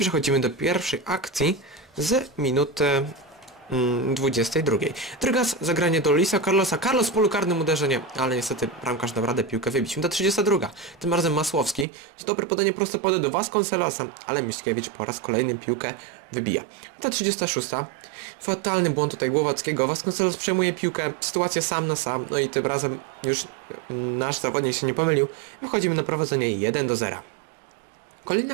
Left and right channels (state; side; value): drops out; left; at 11.9 s